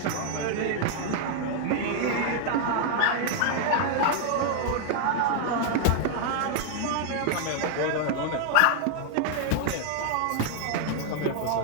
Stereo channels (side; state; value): both; different; correlation 0.00